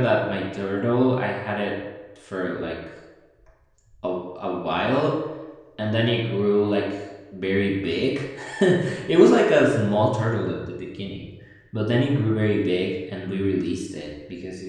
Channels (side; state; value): both; identical; correlation 1.00